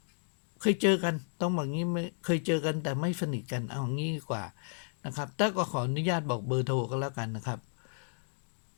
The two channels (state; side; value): silent; right; digital silence